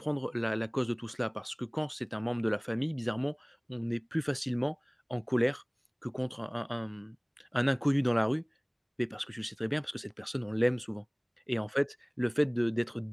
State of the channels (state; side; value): identical; both; correlation 1.00